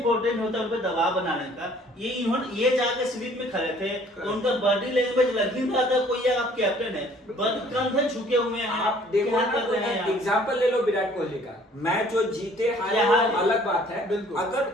होता है उन पे दबाव बनाने का। ये जाके स्लीप में खड़े थे, तो उनका बॉडी लैंग्वेज लग ही रहा था कोई आप कैप्टन है, कंधे झुके हुए हैं, आप देखो क्या ना, कर रहे हैं आप? एग्जांपल ले लो विराट कोहली का, मैच जो जीते हारे यहाँ वो अलग बात है, बिल्कुल।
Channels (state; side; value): normal; both; correlation 0.56